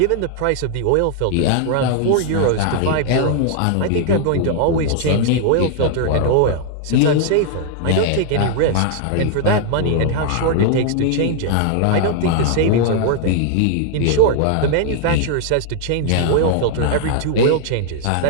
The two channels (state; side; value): different; both; correlation 0.00